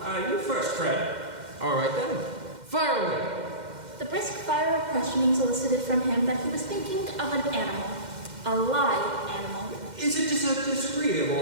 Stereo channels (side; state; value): left; late; 2.1 ms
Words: You first, Fred. All right then. Fire away. The brisk fire of questioning elicited from him that he was thinking of an animal. A live animal. Is it just a disagreeable